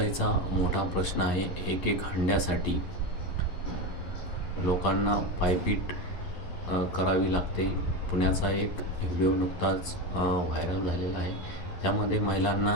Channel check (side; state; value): right; late; 11 ms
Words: मोठा प्रश्न आहे. एक हंड्यासाठी लोकांना पायपीट करावी लागते. पुण्याचा एक व्हिडिओ नुकताच व्हायरल झालेला आहे. त्यामध्ये